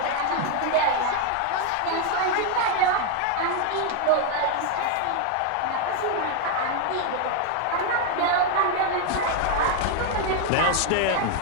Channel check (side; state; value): both; different; correlation 0.00